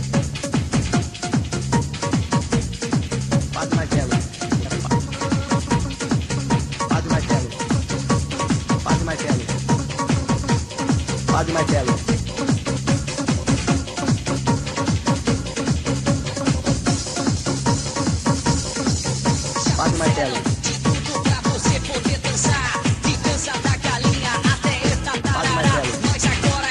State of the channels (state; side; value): identical; both; correlation 1.00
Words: Padre Marcelo. Padre Marcelo. Padre Marcelo. Padre Marcelo. Padre Marcelo. De tudo pra você poder dançar, de dança da galinha até esta tarará. Mas agora